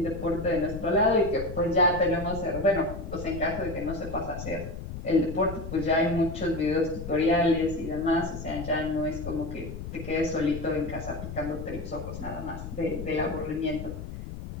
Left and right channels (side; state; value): left; noise; rumble, 9 dB below the sound